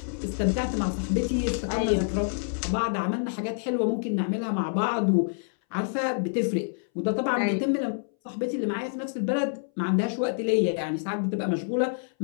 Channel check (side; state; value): right; silent; 60 dB below the other